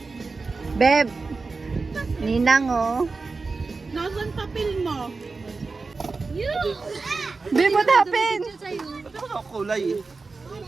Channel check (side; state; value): left; quieter; 4.1 dB